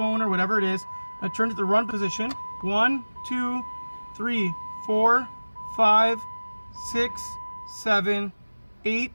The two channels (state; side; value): inverted; both; correlation -1.00